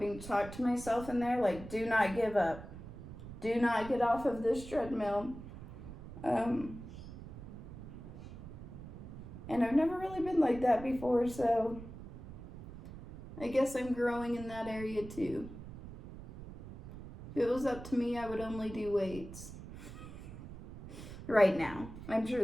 to talk to myself in there, like, do not give up. Do not get off of this treadmill. And I've never really been like that before, so I guess I'm growing in that area too. If it was up to me, I would only do weights. Right now. I'm sure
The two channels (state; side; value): noise; right; rumble, 13 dB below the sound